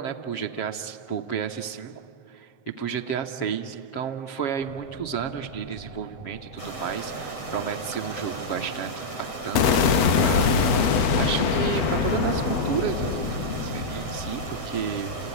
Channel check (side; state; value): right; late; 8.3 ms